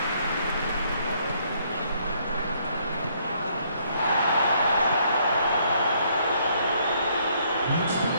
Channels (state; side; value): inverted; both; correlation -0.68